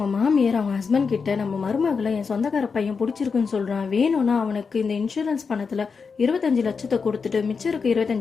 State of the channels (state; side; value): quieter; right; 5.3 dB